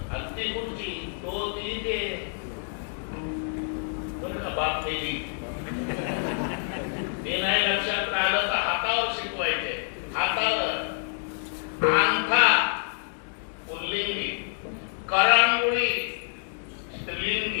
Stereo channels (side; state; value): right; silent; 60 dB below the other